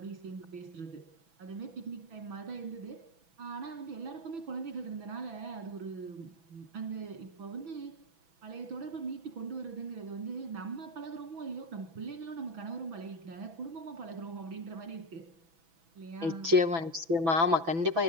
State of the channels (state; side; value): late; left; 6.1 ms